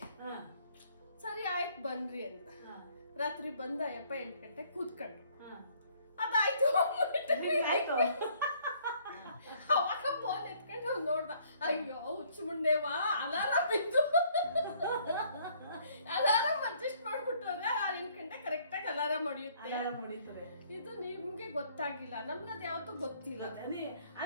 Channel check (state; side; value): inverted; both; correlation -0.62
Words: ಸರಿ ಆಯ್ತು ಬನ್ರಿ ಅಂತ ರಾತ್ರಿ ಬಂದ ಯಪ್ಪ 8 ಗಂಟೆಗೆ ಕೂತ್ಕೊಂಡ್ರು ಅದಾಯ್ತು ಅವಾಗ ಫೋನ್ ಎತ್ಕೊಂಡು ನೋಡ್ದ ಅಯ್ಯೋ ಹುಚ್ಚು ಮುಂಡೆವಾ ಅಲಾರಾಮ್ ಇದ್ದು ಅಲಾರಾಮ್ ಅಡ್ಜಸ್ಟ್ ಮಾಡ್ಬಿಟ್ಟವ್ರೆ 8 ಗಂಟೆ ಕರೆಕ್ಟ್ ಆಗಿ ಅಲಾರಾಮ್ ಹೊಡಿಯುತ್ತೆ ಇದು ನಿಮ್ಗೆ ಗೊತ್ತಾಗಿಲ್ಲ ನಮ್ಗೆ ಅದ್ ಯಾವತ್ತೂ ಗೊತ್ತಿಲ್ಲ